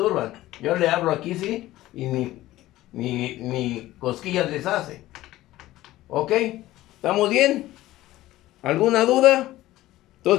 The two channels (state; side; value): quieter; right; 16.0 dB